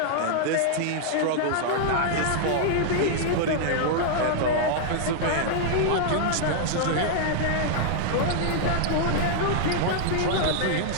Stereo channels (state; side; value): different; both; correlation -0.01